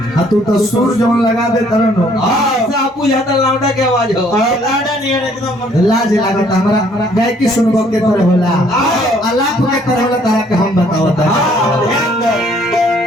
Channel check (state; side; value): normal; both; correlation 0.62